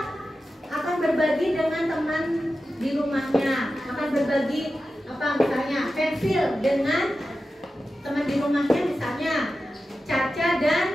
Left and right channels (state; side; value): normal; both; correlation 0.92